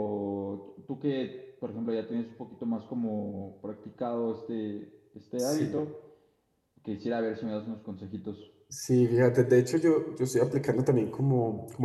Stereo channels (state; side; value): identical; both; correlation 1.00